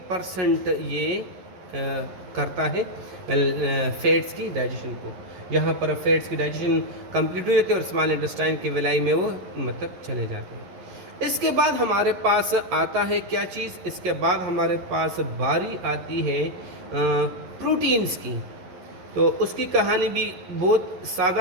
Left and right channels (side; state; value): left; late; 11 ms